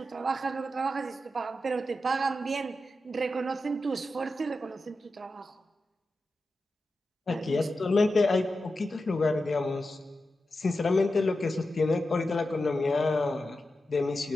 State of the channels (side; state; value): both; normal; correlation 0.91